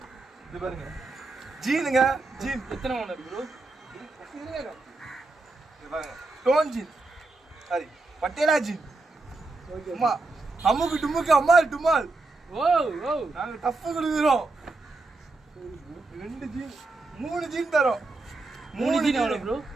இது பாருங்க ஜீனுங்க. ஜீன் எத்தனை ஓனர் ப்ரோ? இது பாருங்க டோன் ஜீன், சாரி பட்டேலா ஜீன். அம்மா அம்முக்கு டும்முக்கு அம்மா டுமால். ஓ ஓ நாங்க டஃப் கொடுக்குறோம். 2 ஜீன் 3 ஜீன் தரோம். 3 ஜீன் எவ்வளோ ப்ரோ?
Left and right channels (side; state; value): left; quieter; 3.4 dB